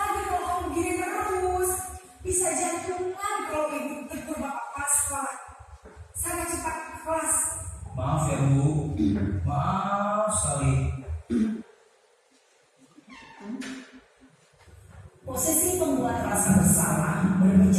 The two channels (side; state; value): both; identical; correlation 1.00